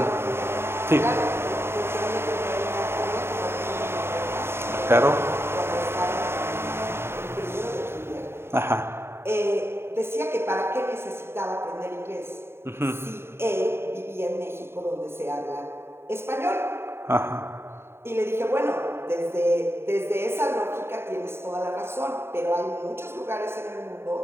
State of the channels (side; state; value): left; late; 0.12 ms